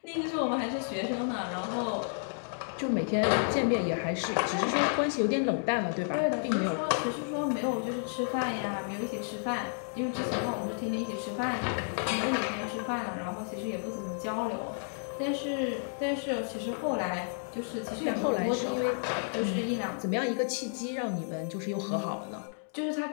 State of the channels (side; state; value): right; silent; digital silence